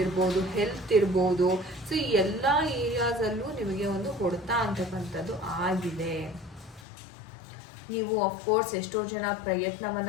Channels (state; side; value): drops out; right; at 6.9 s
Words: ಇರ್ಬೋದು, ಹೆಲ್ತ್ ಇರ್ಬೋದು, ಸೊ ಈ ಎಲ್ಲ ಏರಿಯಾಸಲ್ಲೂ ನಿಮಗೆ ಒಂದು ಹೊಡೆತ ಅಂತಕ್ಕಂಥದ್ದು ಆಗಿದೆ. ನೀವು ಅಫ್ಕೋರ್ಸ್ ಎಷ್ಟೋ ಜನ